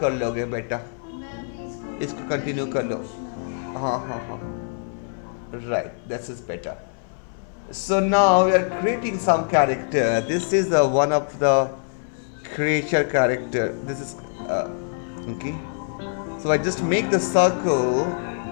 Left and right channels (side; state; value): right; silent; digital silence